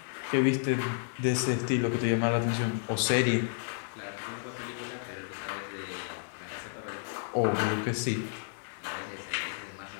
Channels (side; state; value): right; silent; 57 dB below the other